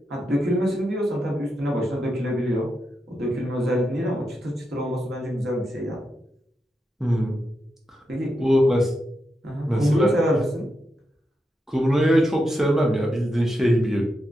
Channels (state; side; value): normal; both; correlation 0.86